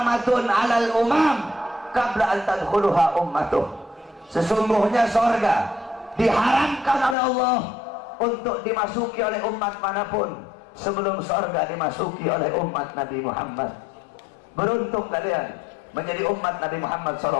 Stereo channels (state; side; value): drops out; right; at 7.2 s